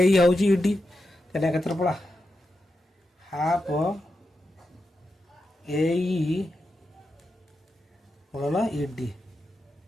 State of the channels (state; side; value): normal; both; correlation 0.88